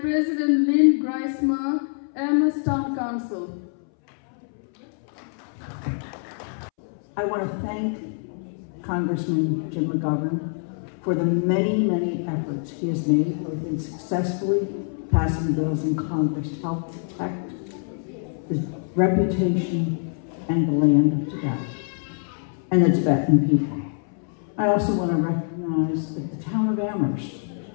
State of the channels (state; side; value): silent; right; 62 dB below the other